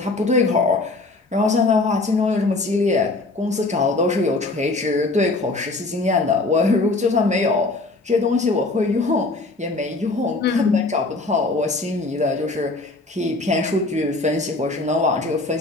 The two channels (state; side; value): quieter; right; 3.3 dB